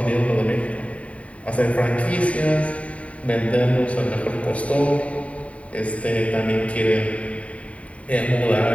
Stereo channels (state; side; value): late; right; 0.066 ms